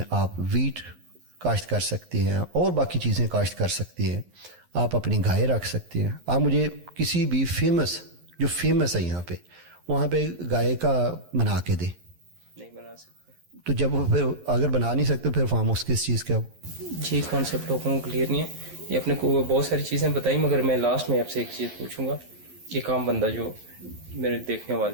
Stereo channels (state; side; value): late; left; 11 ms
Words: آپ ویٹ کاشت کر سکتے ہیں اور باقی چیزیں کاشت کر سکتے ہیں, آپ اپنی گائے رکھ سکتے ہیں. آپ مجھے کسی بھی فیمس جو فیمس ہے یہاں پہ وہاں پہ گائے کا بنا کے دے, نہیں بنا سکتے. تو جب وہ پھر اگر بنا نہیں سکتے پھر فارم ہاؤس کس چیز کا؟ جی کانسیپٹ لوگوں کو کلیئر نہیں ہے. یہ اپنے کو بہت ساری چیزیں بتائی, مگر میں لاسٹ میں آپ سے ایک چیز پوچھوں گا. ایک عام بندہ جو میرے دیکھنے